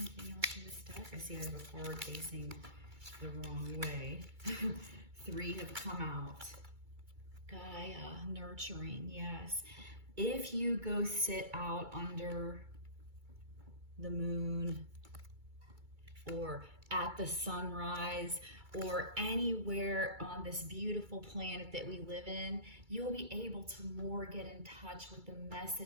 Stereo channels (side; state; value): left; late; 2.3 ms